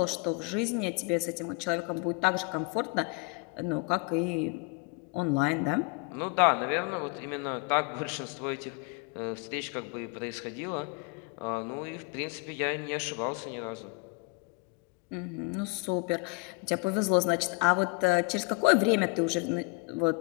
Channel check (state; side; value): quieter; right; 31.1 dB